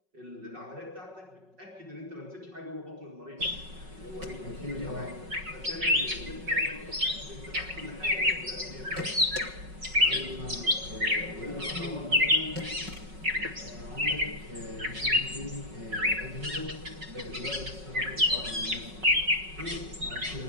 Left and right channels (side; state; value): left; late; 5.4 ms